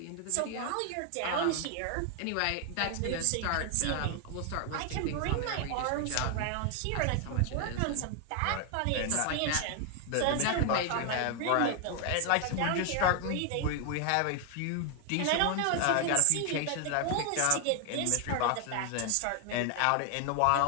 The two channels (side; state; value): both; different; correlation 0.00